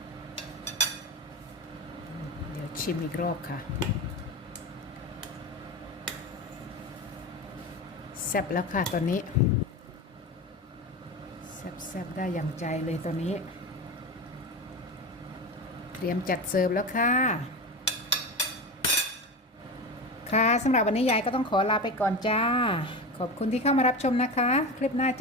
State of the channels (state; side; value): normal; both; correlation 0.24